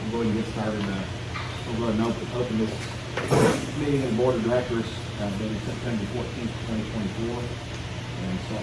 We'll go ahead and get started. We'll go ahead and open this meeting of the Board of Directors, dated September 14th, 2024. And start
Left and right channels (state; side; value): identical; both; correlation 1.00